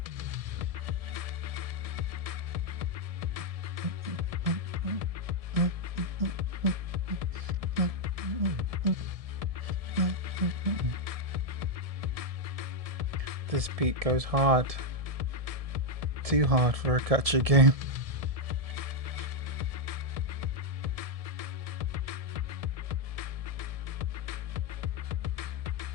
This beat goes hard. Too hard for a gacha game.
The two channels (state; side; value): late; left; 1.7 ms